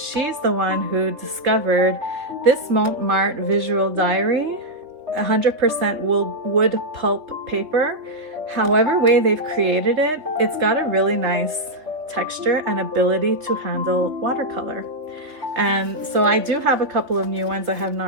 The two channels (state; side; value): late; left; 3.7 ms